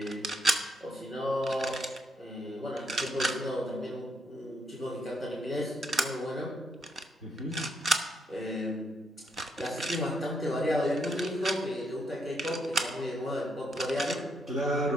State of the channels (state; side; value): normal; both; correlation 0.75